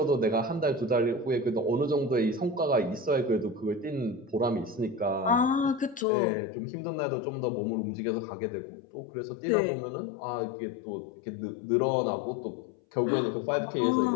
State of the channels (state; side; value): drops out; right; at 6.1 s